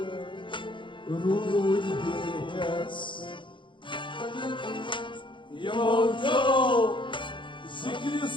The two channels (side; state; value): right; late; 0.24 ms